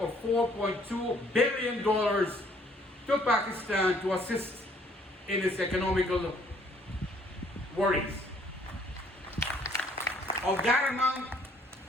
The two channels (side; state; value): both; normal; correlation 0.62